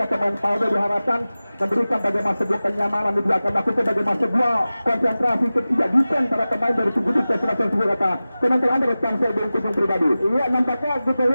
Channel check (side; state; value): both; inverted; correlation -0.96